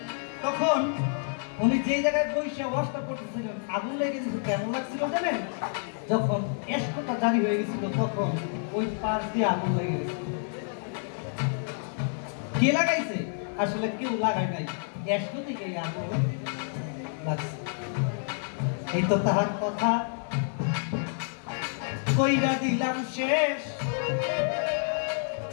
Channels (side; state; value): right; silent; 59 dB below the other